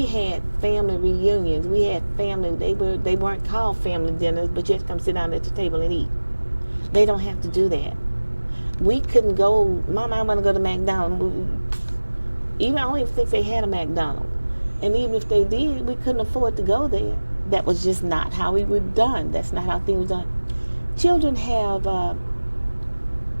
had family reunions. We had family, they weren't called family dinners, but you had to come sit down at the table and eat. They don't have to do that. We couldn't go, Mama, I want to go to McDonald's. I don't even think they had a McDonald's. And even if they did, we couldn't afford to go there that was just not how we were done. That's not how things were done. Children have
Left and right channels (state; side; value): inverted; both; correlation -1.00